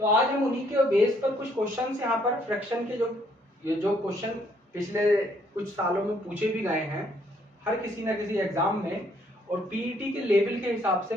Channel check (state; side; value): normal; both; correlation 0.67